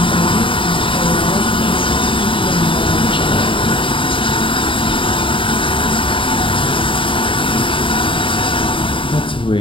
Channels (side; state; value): right; late; 0.25 ms